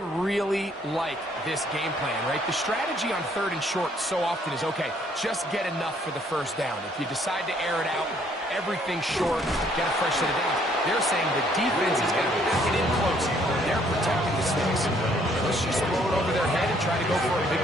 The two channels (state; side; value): normal; both; correlation 0.65